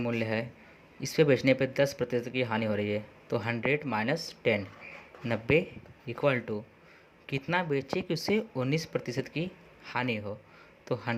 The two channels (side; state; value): both; identical; correlation 1.00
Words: है इस पे बेचने पे 10% की हानि हो रही है, तो 100 माइनस 10 90 इक्वल टू कितना बेचे कि उसे 19% की हानि हो, तो